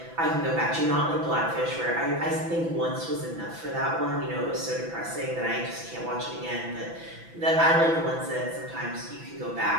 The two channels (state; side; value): late; left; 6.0 ms